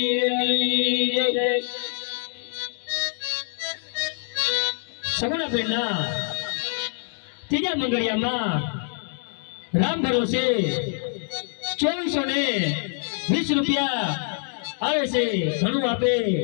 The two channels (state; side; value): silent; right; 57 dB below the other